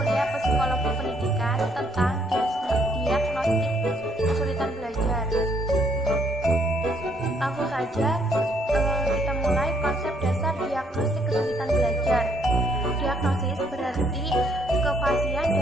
Psikologi Pendidikan tentang diagnostik kesulitan belajar. Langsung saja kita mulai konsep dasar diagnostik kesulitan belajar. Diagnosis berarti kefasihan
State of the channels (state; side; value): normal; both; correlation 0.69